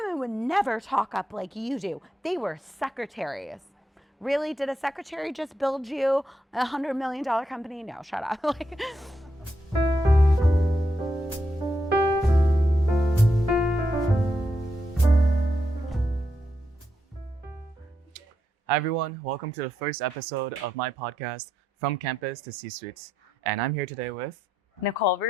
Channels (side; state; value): both; normal; correlation 0.82